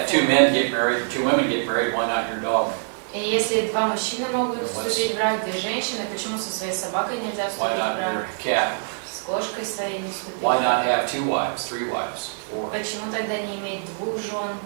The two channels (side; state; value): left; silent; digital silence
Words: get two форма. men get married, two women get married, why not your dog? И если два мужчины могут вступить в брак, две женщины, почему со своей собакой нельзя Why вступить в not брак? your cat? С кошкой своей не вступить. Why not have 2 wives, 3 wives, 4? Почему тогда не иметь двух жен,